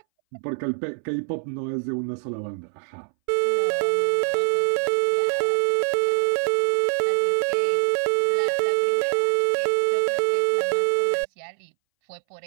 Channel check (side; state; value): left; silent; 62 dB below the other